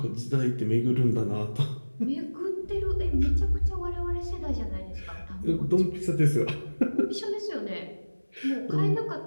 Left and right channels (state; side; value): inverted; both; correlation -1.00